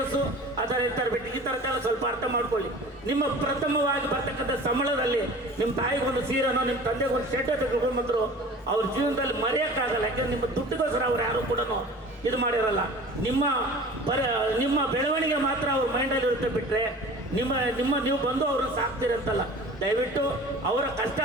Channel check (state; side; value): normal; both; correlation 0.41